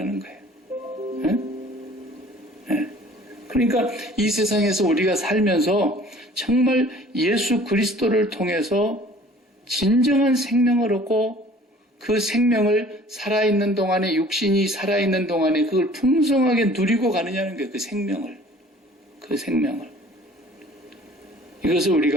거예요. 네? 네. 그러니까 이 세상에서 우리가 살면서 정말 예수 그리스도를 통해서 진정한 생명을 얻고 그 생명을 살아있는 동안에 육신이 살아있는 동안에 그걸 풍성하게 누리고 가느냐는 거예요. 그 생명을. 이것을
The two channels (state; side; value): normal; both; correlation 0.50